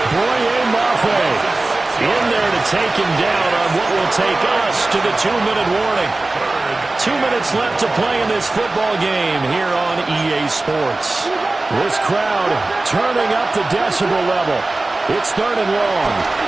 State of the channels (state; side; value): quieter; left; 3.1 dB